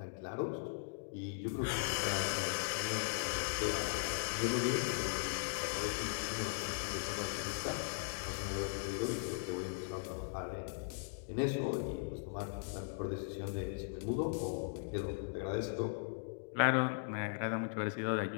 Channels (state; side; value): silent; right; digital silence